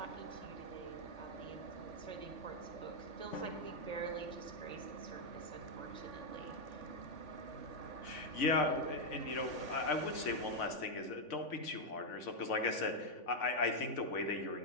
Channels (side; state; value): right; late; 3.5 ms